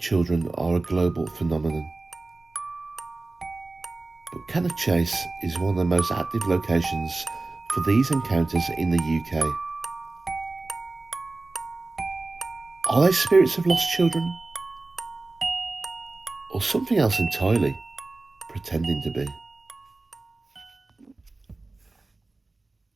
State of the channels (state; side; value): quieter; left; 3.3 dB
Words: are a global phenomenon, but Cannock Chase is one of the most active locations for these encounters in the UK. Are they spirits of lost children? Or something else entirely, pretending to be?